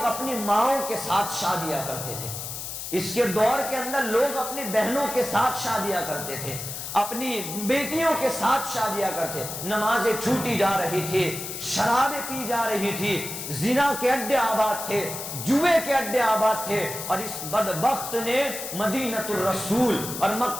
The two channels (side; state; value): left; noise; hiss, 7 dB below the sound